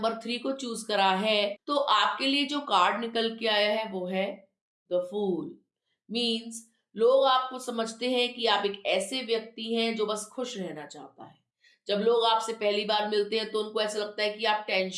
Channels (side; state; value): both; identical; correlation 1.00